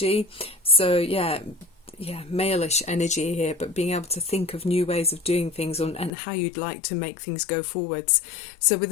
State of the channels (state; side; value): drops out; right; at 6.1 s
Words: So yeah, male-ish energy here, but being able to think of new ways of doing things and how you'd like to make things go forwards. So with